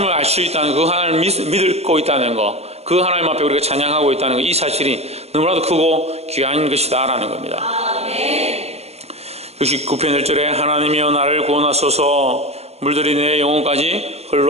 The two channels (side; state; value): left; late; 0.31 ms